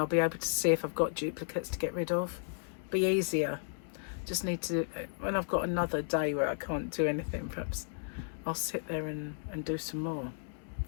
be able to see if I've got duplicates to get rid of. Be easier. Just need to, when I've got another day where I can't do anything, perhaps I'll sit there and do some more.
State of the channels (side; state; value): right; silent; 55 dB below the other